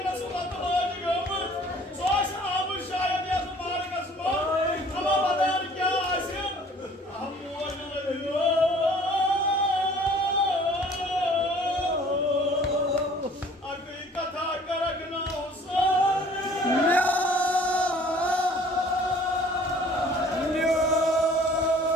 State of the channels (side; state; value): both; normal; correlation 0.53